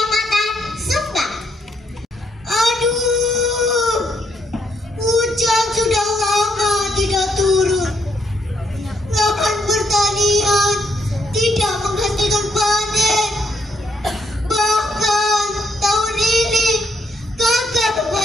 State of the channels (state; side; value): normal; both; correlation 0.74